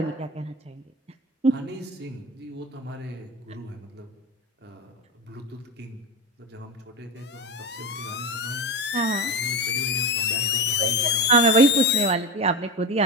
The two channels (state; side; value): normal; both; correlation 0.20